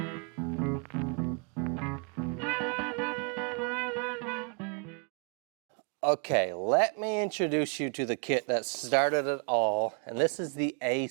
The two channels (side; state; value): left; quieter; 38.1 dB